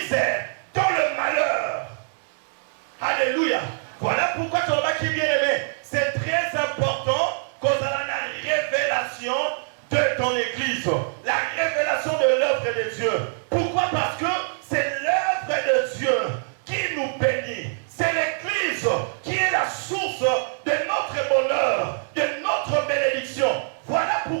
dans le malheur. Alléluia. Voilà pourquoi ton qui bien aimé, c'est très important qu'on a la révélation de ton église, la révélation de l'œuvre de Dieu. Pourquoi? Parce que c'est l'œuvre de Dieu qui nous bénit. C'est l'église qui est la source de notre bonheur, de notre bénédiction. Voilà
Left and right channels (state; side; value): silent; left; 62 dB below the other